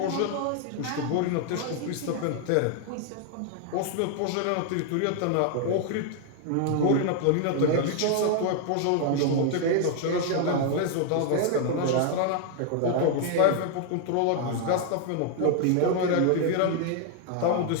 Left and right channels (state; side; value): different; both; correlation 0.00